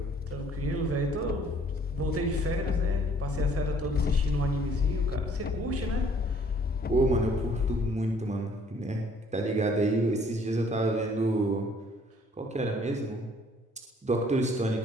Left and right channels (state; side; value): normal; both; correlation 0.59